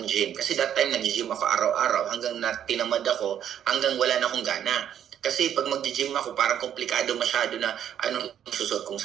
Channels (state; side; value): quieter; left; 9.8 dB